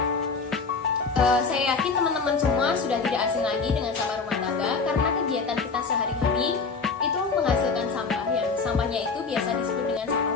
saya yakin teman-teman semua sudah tidak asing lagi dengan sampah rumah tangga karena kegiatan kita sehari-hari itu menghasilkan sampah yang sampahnya itu biasa disebut dengan sampah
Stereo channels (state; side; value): quieter; right; 4.7 dB